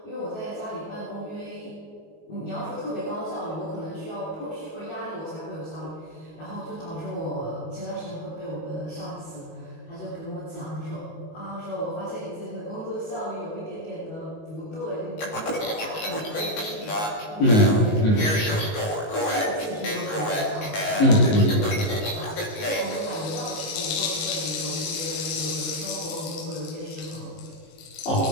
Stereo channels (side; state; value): right; late; 19 ms